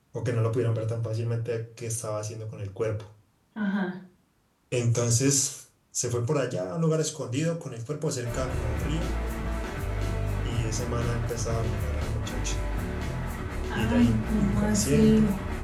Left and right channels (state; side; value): identical; both; correlation 1.00